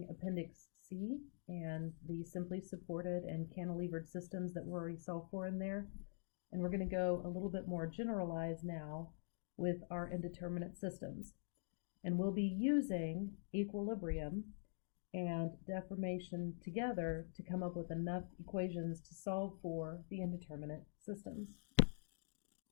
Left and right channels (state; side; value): silent; right; digital silence